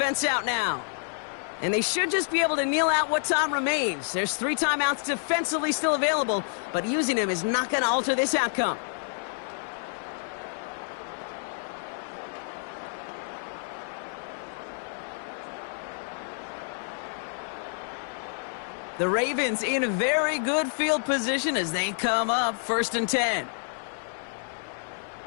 out now. And they should just be able to kneel out what time remains. There's 3 timeouts defensively still available, but using them is not going to alter this outcome. The Ravens in very good field position as they come up 1st and 10.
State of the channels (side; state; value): right; silent; 57 dB below the other